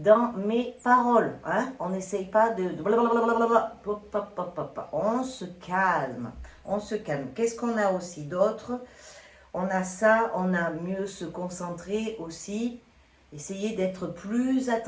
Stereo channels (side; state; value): both; identical; correlation 1.00